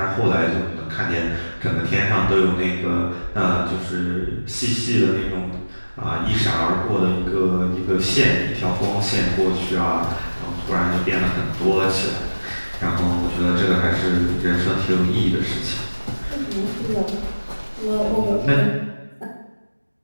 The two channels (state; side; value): inverted; both; correlation -1.00